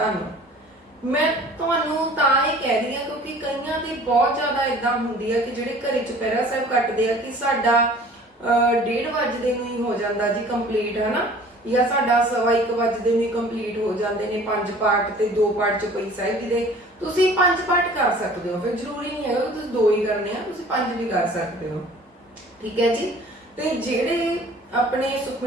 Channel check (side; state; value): both; normal; correlation 0.48